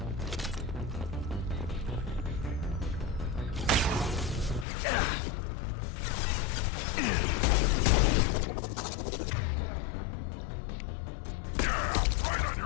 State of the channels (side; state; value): right; drops out; at 4.7 s